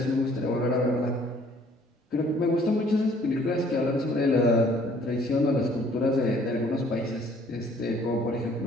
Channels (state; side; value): normal; both; correlation 0.59